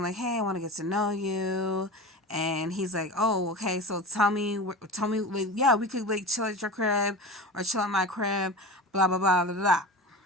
like, hey, I want to get to know you, and he's like, oh, okay, so tell me, like, yeah, we could like chill at your crib or chill at my crib, blah blah blah blah blah.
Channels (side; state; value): both; normal; correlation 0.31